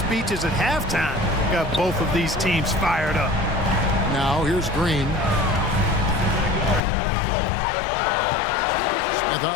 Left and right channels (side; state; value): right; drops out; at 6.8 s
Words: at halftime got both of these teams fired up. Now here's Green. Smith